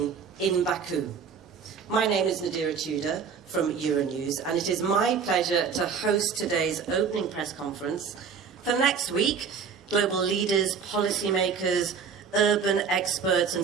in Baku. My name is Nadira Tudor from Euronews, and it is my pleasure to host today's opening press conference. For next week, global leaders, policymakers, urban experts and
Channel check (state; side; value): quieter; left; 6.3 dB